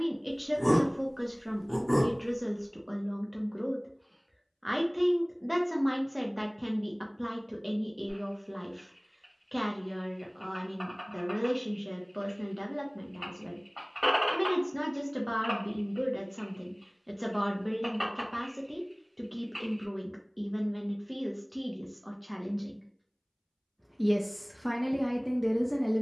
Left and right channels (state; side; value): identical; both; correlation 1.00